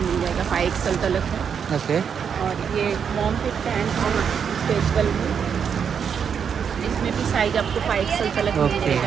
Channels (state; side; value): quieter; left; 7.2 dB